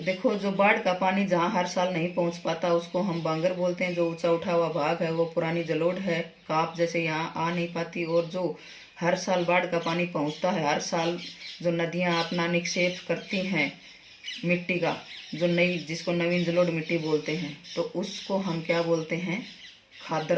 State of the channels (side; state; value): both; identical; correlation 1.00